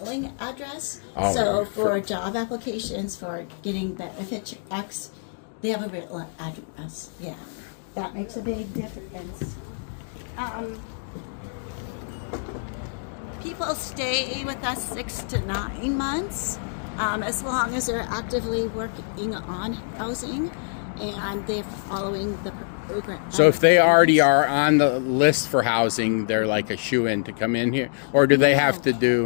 address. Oh, So for- for job applications, for getting benefit checks, they have a real address. Yeah, that makes a big difference. People stay with us 6 to 9 months, as long as they're actively working on housing and they're following the program. So if they already are on the list for housing, they're like a shoe-in to come in here, or do they have to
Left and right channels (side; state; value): right; silent; digital silence